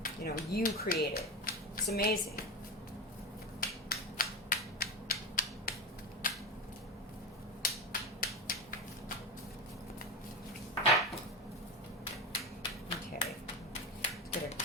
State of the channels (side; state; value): both; normal; correlation 0.20